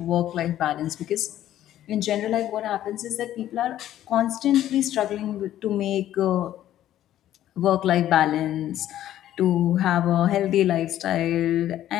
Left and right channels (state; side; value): quieter; right; 12.5 dB